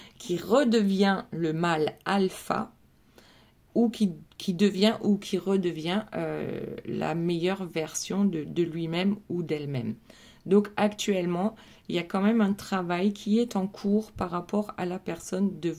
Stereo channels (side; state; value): both; identical; correlation 1.00